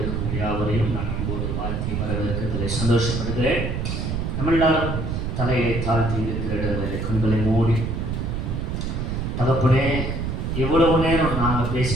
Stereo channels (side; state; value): right; noise; rumble, 2 dB below the sound